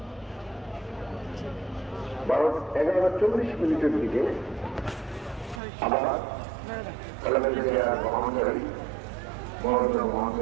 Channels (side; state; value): left; drops out; at 5.6 s